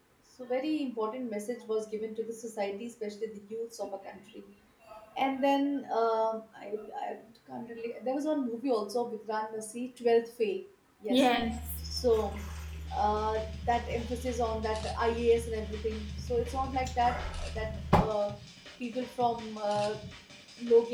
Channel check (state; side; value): identical; both; correlation 1.00